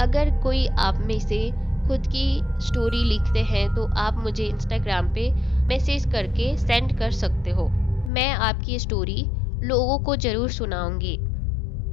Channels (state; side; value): drops out; right; at 8.1 s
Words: कोई आप में से खुद की स्टोरी लिखते हैं तो आप मुझे इंस्टाग्राम पे मैसेज करके सेंड कर सकते हो। मैं आपकी स्टोरी लोगों को जरूर सुनाऊंगी।